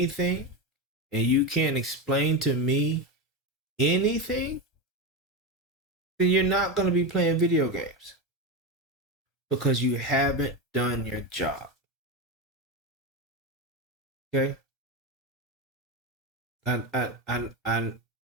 and you can't explain to me anything, then you're not going to be playing video games because you haven't done your job. Okay?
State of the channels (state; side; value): normal; both; correlation 0.15